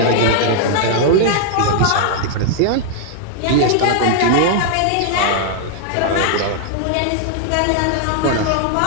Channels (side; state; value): both; different; correlation -0.01